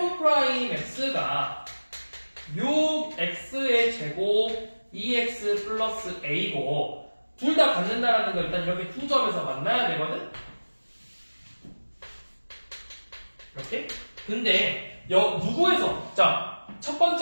6x의 제곱 2x 플러스 a고 둘 다 갖는다라는 거 일단 이렇게 두 점에서 만나야 되거든? 이렇게? 근데 누구에서? 자, 첫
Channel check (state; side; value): inverted; both; correlation -1.00